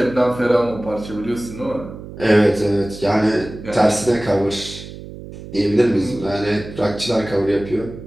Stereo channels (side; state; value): right; noise; hum, 13 dB below the sound